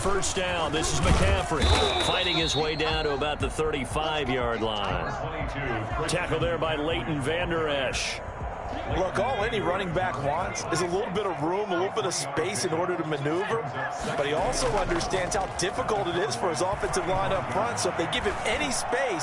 down, this is McCaffrey fighting his way down to about the 35-yard line. Tackle there by Leighton Vander Esch. Look, all any running back wants is a little bit of room, a little bit of space in order to maneuver. But he also understands how difficult it is for his offensive line up front. So if they give him any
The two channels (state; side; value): identical; both; correlation 1.00